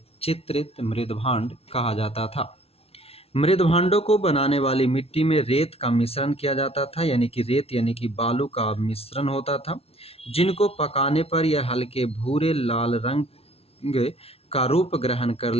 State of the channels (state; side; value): late; right; 0.29 ms